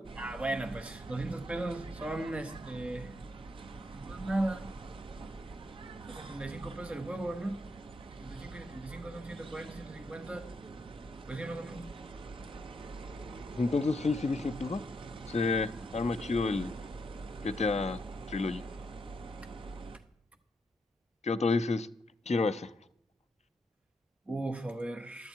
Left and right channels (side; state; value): both; normal; correlation 0.79